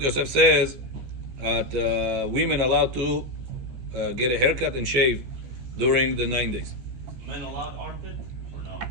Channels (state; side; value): late; left; 16 ms